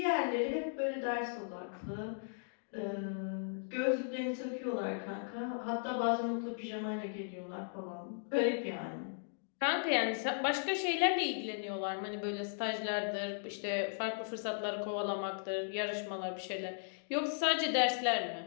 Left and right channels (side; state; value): right; silent; digital silence